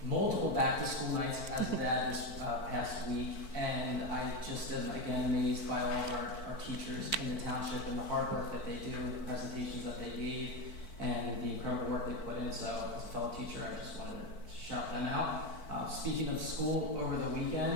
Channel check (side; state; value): right; late; 4.5 ms